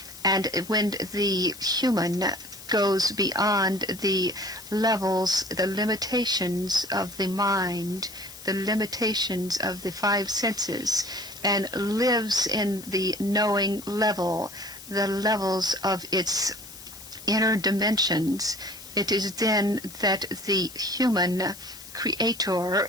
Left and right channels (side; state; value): left; noise; hiss, 16 dB below the sound